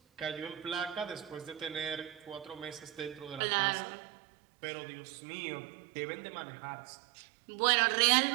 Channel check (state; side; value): drops out; left; at 3.4 s